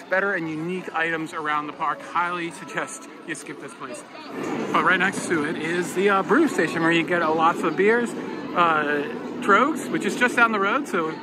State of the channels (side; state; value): both; identical; correlation 1.00